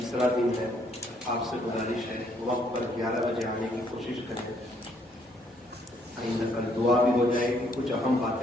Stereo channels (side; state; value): both; normal; correlation 0.68